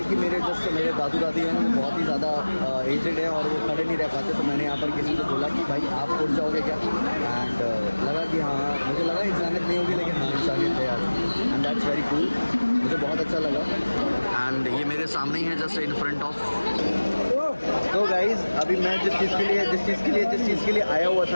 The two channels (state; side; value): inverted; both; correlation -1.00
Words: कि मेरे दादू दादी हैं वो बहुत ही ज़्यादा एजेड है और वो खड़े नहीं रह पाते, तो मैंने यहाँ पर किसी से बोला कि भाई आप उठ जाओगे क्या, एंड लगा कि हाँ, मुझे लगा इंसानियत नहीं होगी, लेकिन हाँ इंसानियत है यार, एंड दैट्स वेरी कूल, मुझे बहुत अच्छा लगा। एंड ये मेरे सामने ही है, जस्ट इन फ्रंट ऑफ। तो गाइज अभी मैं जिस चीज़ के लिए आया हुआ